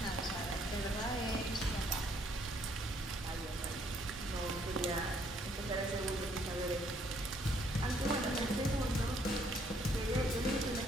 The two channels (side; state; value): both; normal; correlation 0.67